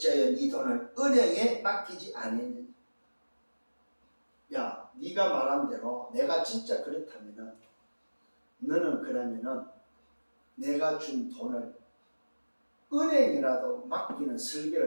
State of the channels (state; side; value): inverted; both; correlation -1.00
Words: 네 돈을 은행에 맡기지 않느냐. 야 네가 말한 대로 내가 진짜 그렇다면 너는 그러면은 내가 준 돈을 은행이라도 맡기는